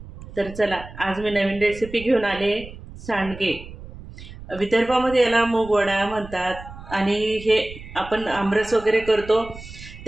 तर चला, आज मी नवीन रेसिपी घेऊन आले. सांडगे. विदर्भामध्ये याला मूगवडा म्हणतात आणि हे आपण आमरस वगैरे करतो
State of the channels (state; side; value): noise; right; rumble, 15 dB below the sound